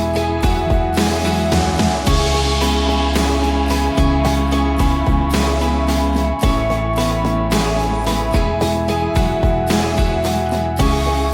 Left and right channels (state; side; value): identical; both; correlation 1.00